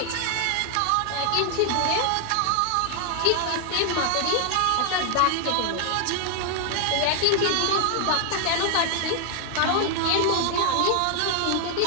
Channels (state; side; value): different; both; correlation 0.00